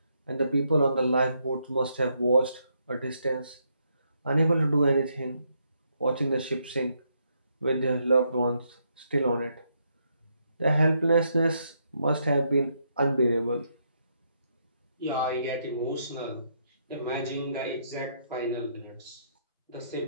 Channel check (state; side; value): inverted; both; correlation -0.76